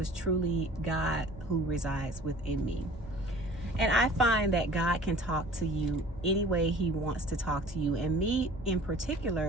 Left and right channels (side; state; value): both; normal; correlation 0.46